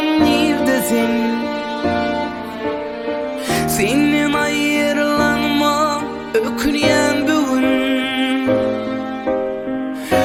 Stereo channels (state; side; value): identical; both; correlation 1.00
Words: neredesin? Senin ayrılanma öküyen bugün,